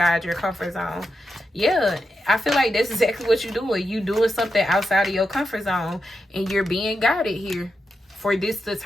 your comfort zone. Yeah, I feel like that's exactly what you're doing. You doing something outside of your comfort zone and you're being guided here. For this to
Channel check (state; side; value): normal; both; correlation 0.87